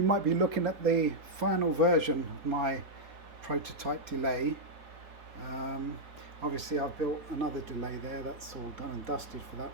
might be looking at the final version of my prototype delay. Um, Obviously, I've built another delay there. That's all done and dusted for that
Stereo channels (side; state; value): left; late; 4.3 ms